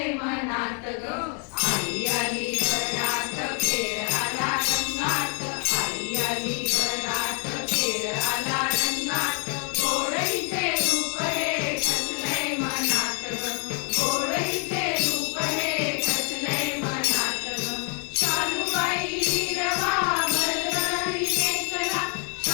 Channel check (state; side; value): quieter; right; 39.4 dB